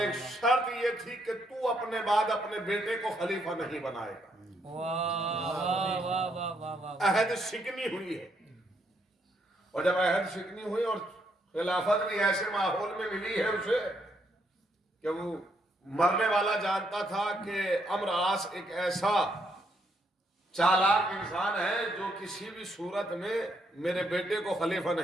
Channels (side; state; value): both; normal; correlation 0.75